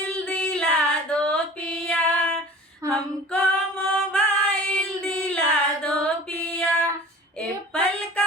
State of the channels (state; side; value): normal; both; correlation 0.42